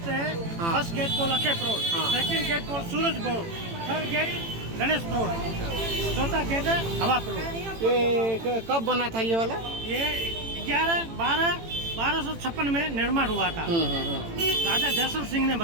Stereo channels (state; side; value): late; left; 18 ms